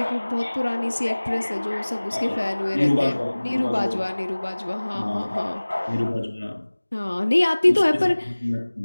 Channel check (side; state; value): both; inverted; correlation -1.00